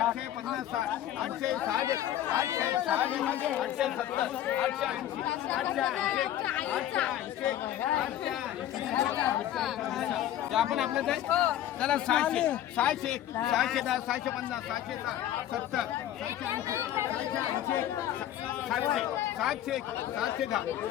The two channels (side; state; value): right; quieter; 12.0 dB